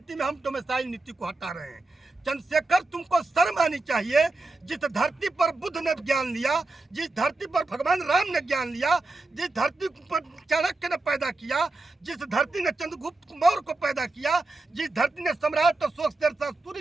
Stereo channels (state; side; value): quieter; left; 3.2 dB